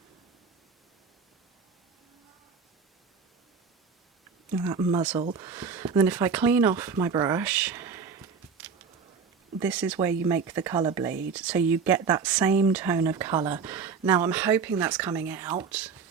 And that muzzle. And then if I clean off my brush, this is where you make the colour bleed. So you get that same tone of colour. Now I'm hoping that's coming out.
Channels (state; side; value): quieter; left; 5.6 dB